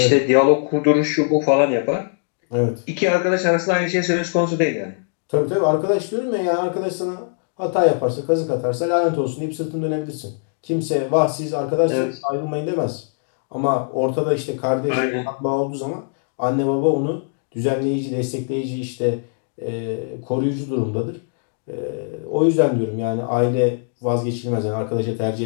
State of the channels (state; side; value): silent; right; digital silence